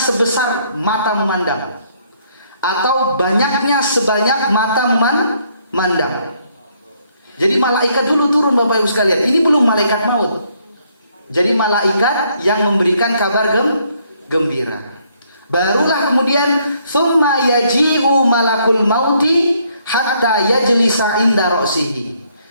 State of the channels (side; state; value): both; inverted; correlation -0.69